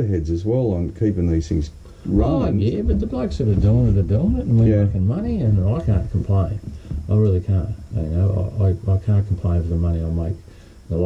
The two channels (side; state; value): both; identical; correlation 1.00